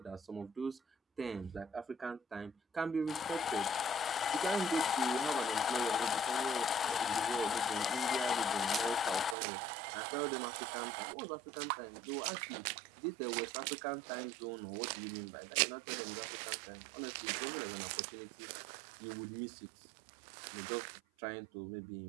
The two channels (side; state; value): left; drops out; at 9.3 s